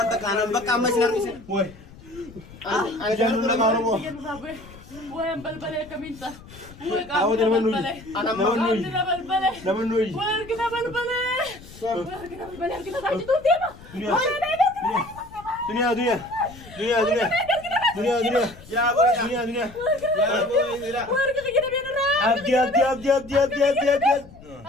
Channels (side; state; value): left; noise; rumble, 20 dB below the sound